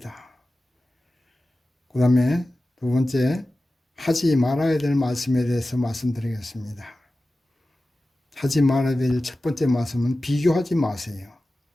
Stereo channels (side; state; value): both; normal; correlation 0.95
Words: 그 다음에 두 번째, 하지 말아야 될 말씀에 대해서 말씀드리겠습니다. 하지 말아야 될 첫 번째 말씀은 비교하지 마세요.